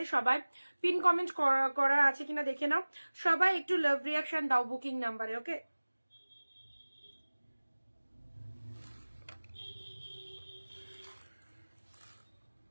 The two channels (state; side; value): inverted; both; correlation -1.00